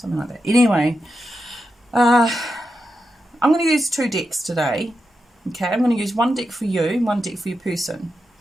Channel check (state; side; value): normal; both; correlation 0.88